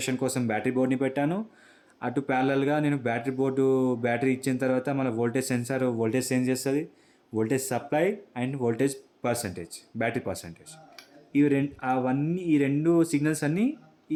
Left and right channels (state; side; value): identical; both; correlation 1.00